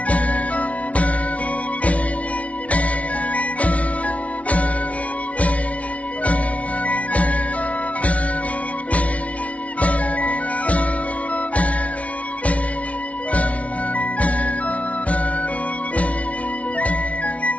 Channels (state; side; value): late; right; 0.065 ms